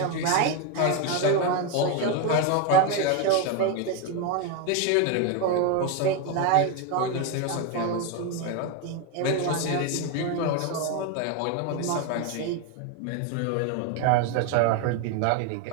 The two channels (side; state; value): both; different; correlation 0.02